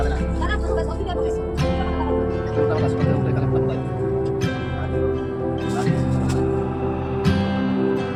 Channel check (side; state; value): both; identical; correlation 1.00